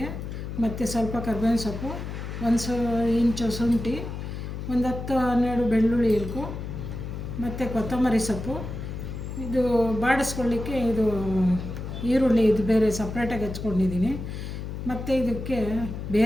ಮತ್ತು ಸ್ವಲ್ಪ ಕರ್ಬೇವಿನ ಸೊಪ್ಪು, 1 ಇಂಚು ಶುಂಠಿ, 10-12 ಬೆಳ್ಳುಳ್ಳಿ ಇಲ್ಕು, ಮತ್ತು ಕೊತ್ತಂಬರಿ ಸೊಪ್ಪು. ಇದು ಬಾಡಿಸ್ಕೊಳ್ಳಿಕ್ಕೆ ಇದು ಈರುಳ್ಳಿ ಇದು ಬೇರೆ ಸಪ್ರೇಟಾಗಿ ಹೆಚ್ಕೊಂಡಿದ್ದೀನಿ. ಮತ್ತು ಇದಕ್ಕೆ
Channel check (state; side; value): noise; left; hum, 7 dB below the sound